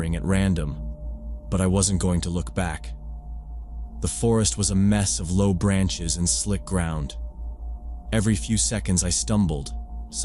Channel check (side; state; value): both; identical; correlation 1.00